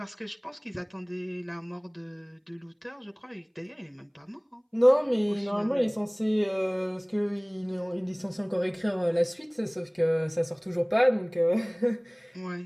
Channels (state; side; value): identical; both; correlation 1.00